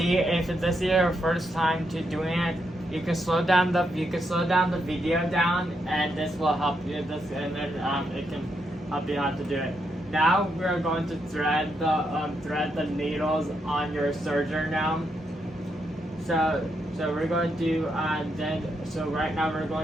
if this is your first time to doing it, you can slow down the video down, and this will help you. It can help you how to do it. Now we're going to thread the needles on your serger now. So we're going to do so right now we're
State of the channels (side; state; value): both; normal; correlation 0.80